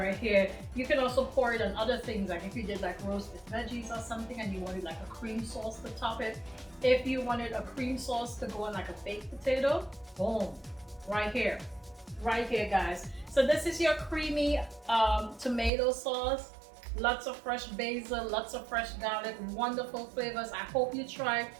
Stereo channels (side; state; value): left; drops out; at 15.7 s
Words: here. You can also pour it on other things, like if you did like roasted veggies or something and you wanted like a cream sauce to top it. If you wanted a cream sauce to go on like a baked potato, boom, right here, guys. So this is your creamy tomato sauce. Lots of fresh basil, lots of fresh garlic, wonderful flavors. I hope you try.